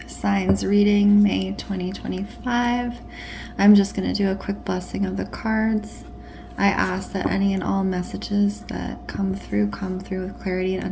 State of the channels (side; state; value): both; identical; correlation 1.00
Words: Signs reading, May 2025. I'm just going to do a quick blessing of the cards. I ask that any and all messages that come through with clarity and